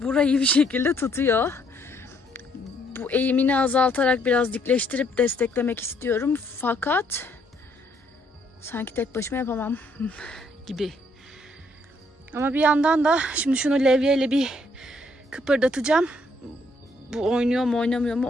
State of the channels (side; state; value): both; normal; correlation 0.69